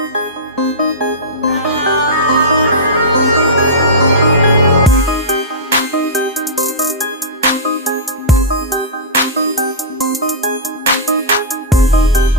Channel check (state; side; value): normal; both; correlation -0.16